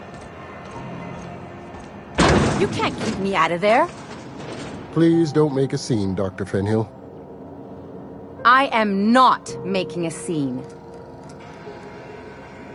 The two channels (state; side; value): identical; both; correlation 1.00